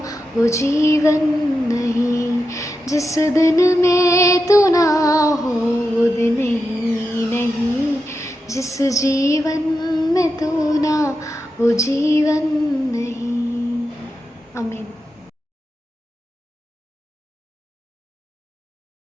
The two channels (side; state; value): both; normal; correlation 0.88